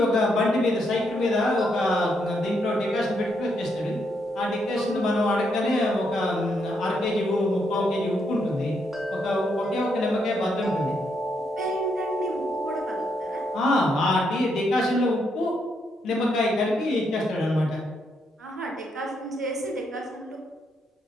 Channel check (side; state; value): both; normal; correlation 0.77